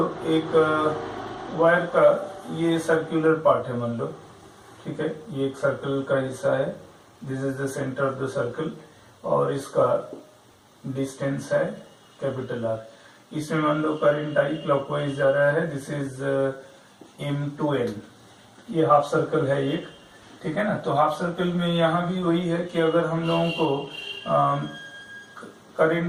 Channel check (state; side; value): identical; both; correlation 1.00